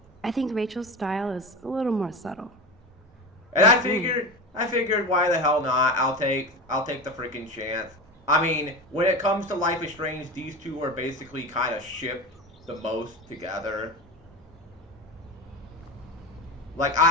I think Rachel's style is a little more subtle. And I figured why the hell not? I'll take the freaking chance. I mean, when it comes to Life is Strange, these two are basically kind of shipped the most together. Like,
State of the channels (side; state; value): both; normal; correlation 0.26